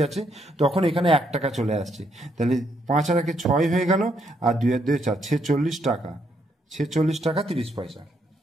যাচ্ছে তখন এখানে 1 টাকা চলে আসছে। তাহলে 5 আর 1 6 হয়ে গেল, আর 2 আর 2 4, 46 টাকা, 46 টাকা 30 পয়সা।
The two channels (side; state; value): both; normal; correlation 0.75